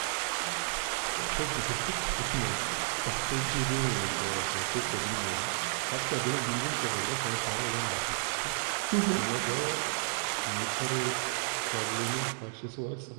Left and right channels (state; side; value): silent; left; 57 dB below the other